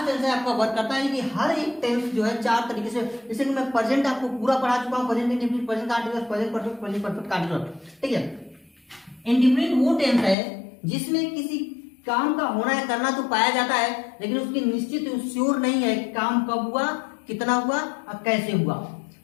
टेंस है आपका वर्क करता है, कि हर एक टेंस जो है 4 तरीके से। जैसे कि मैं प्रेजेंट आपको पूरा पढ़ा चुका हूं, present indefinite, present continuous, present perfect, present perfect continuous. ठीक है, इंडेफिनिट वो टेंस है जिसमें किसी काम का होना है, करना तो पाया जाता है, लेकिन उसकी निश्चित श्योर नहीं है कि काम कब हुआ, कितना हुआ और कैसे हुआ।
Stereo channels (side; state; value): right; drops out; at 10.4 s